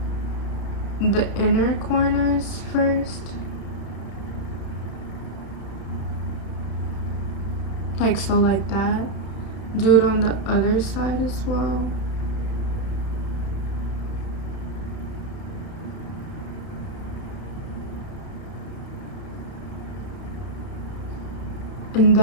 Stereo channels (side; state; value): right; late; 31 ms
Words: the inner corners first, like so, like that. Do it on the other side as well. And